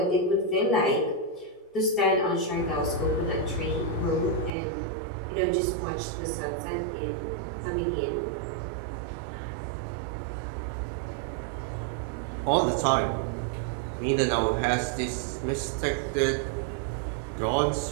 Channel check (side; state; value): left; drops out; at 4.5 s